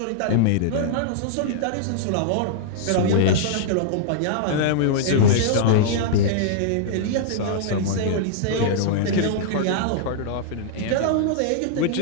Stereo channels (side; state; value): both; different; correlation -0.02